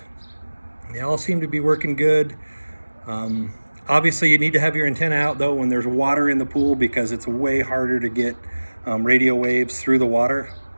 They all seem to be working good. Obviously you need to have your antenna out though when there's water in the pool, because it's way harder to get radio waves through the water.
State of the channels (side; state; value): both; inverted; correlation -1.00